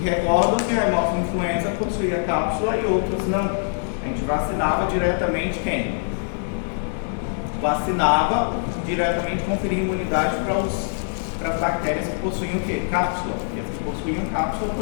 Recordam que a Haemophilus influenza possuía cápsula e outros não. A gente vacinava diretamente quem? Vacinava diretamente, conferia imunidade para as bactérias que possuíam o quê? Cápsula. E as que possuíam cápsula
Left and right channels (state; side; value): silent; right; digital silence